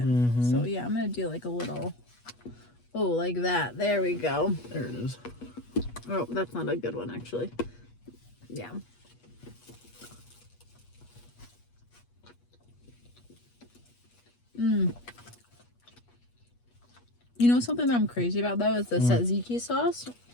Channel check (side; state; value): right; late; 8.3 ms